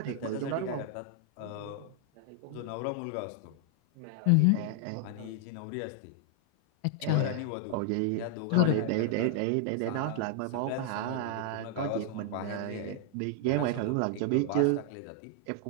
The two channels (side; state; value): both; different; correlation 0.00